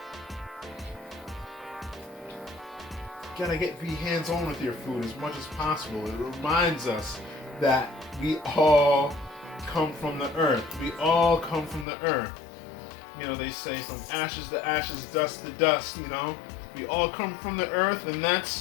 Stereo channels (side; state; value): right; drops out; at 11.9 s